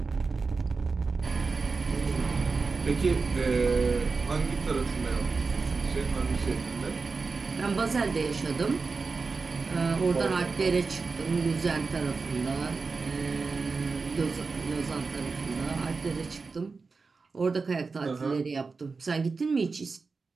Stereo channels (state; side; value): quieter; left; 4.4 dB